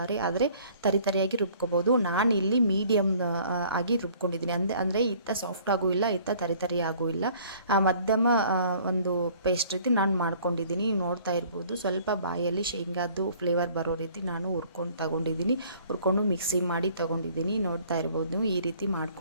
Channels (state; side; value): inverted; both; correlation -0.55